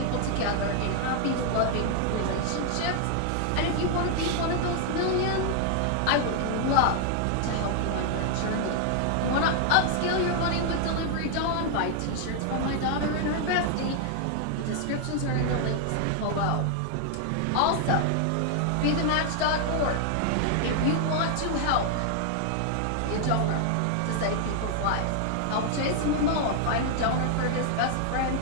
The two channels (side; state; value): both; different; correlation 0.00